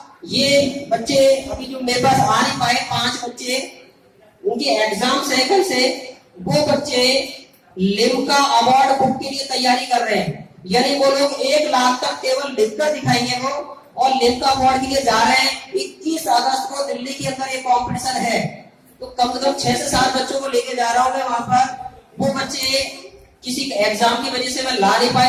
ये बच्चे अभी जो मेरे पास आ नहीं पाए 5 बच्चे, उनके एग्जाम है कल से, वो बच्चे लिम्का अवार्ड बुक के लिए तैयारी कर रहे हैं, यानी वो लोग 1 लाख तक केवल लिखकर दिखाएंगे वो, और लिम्का अवार्ड के लिए जा रहे हैं। अगस्त को दिल्ली के अंदर एक कंपटीशन है, तो कम से कम 6 से 7 बच्चों को लेके जा रहा हूँ मैं वहां पर। वो बच्चे किसी एग्जाम की वजह से मैं ला नहीं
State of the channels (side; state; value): both; identical; correlation 1.00